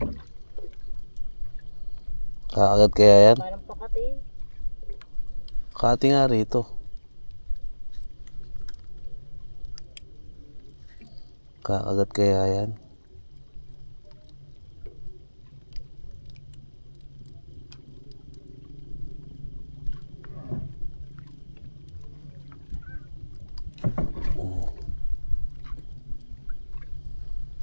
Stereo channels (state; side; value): inverted; both; correlation -1.00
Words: Kakagat kaya yan? Parang pakati. Kati nga rito. Kakagat kaya yan?